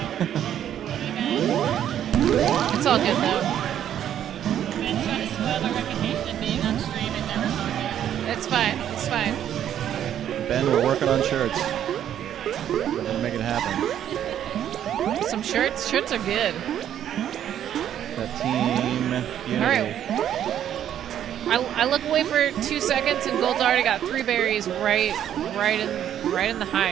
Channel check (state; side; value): quieter; left; 10.4 dB